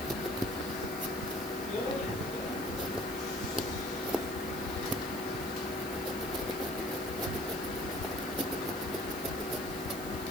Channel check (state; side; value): noise; right; hiss, 11 dB below the sound